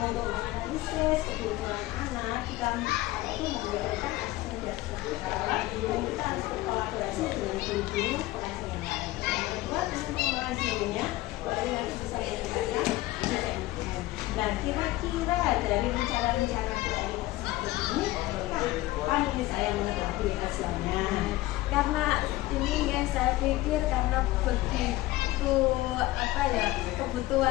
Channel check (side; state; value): right; quieter; 17.7 dB